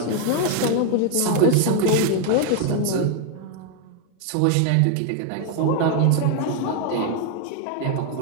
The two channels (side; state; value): both; different; correlation 0.01